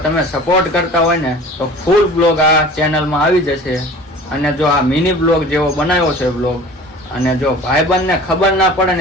તમે સપોર્ટ કરતા હોય ને તો ફૂલ બ્લોગ આ ચેનલમાં આવી જશે. અને જો આ મિની બ્લોગ જેવો બનાવ્યો છે બ્લોગ, અને જો ભાઈબંધને ખબર ના પડે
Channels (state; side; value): normal; both; correlation 0.43